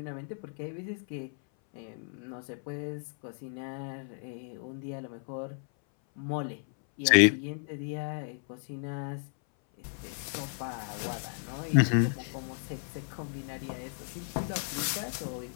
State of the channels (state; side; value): silent; right; 56 dB below the other